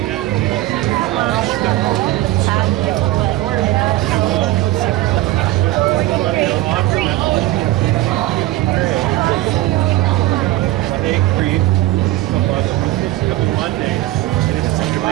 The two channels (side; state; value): left; quieter; 16.4 dB